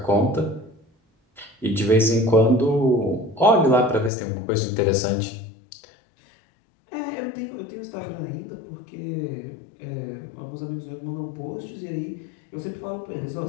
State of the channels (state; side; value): drops out; right; at 4.1 s